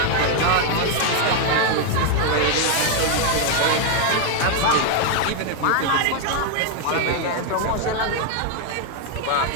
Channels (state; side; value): different; both; correlation 0.01